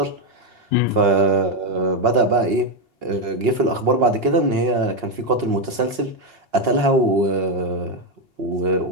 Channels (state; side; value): late; left; 2.8 ms